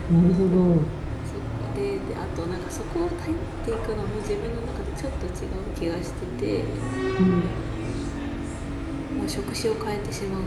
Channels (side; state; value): both; identical; correlation 1.00